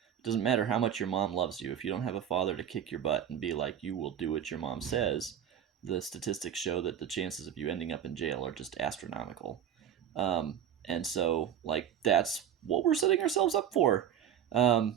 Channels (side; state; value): left; quieter; 9.6 dB